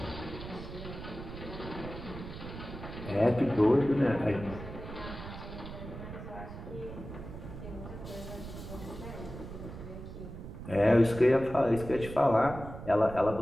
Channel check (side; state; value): right; noise; rumble, 11 dB below the sound